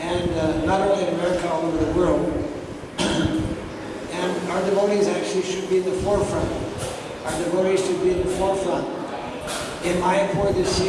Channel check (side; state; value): both; identical; correlation 1.00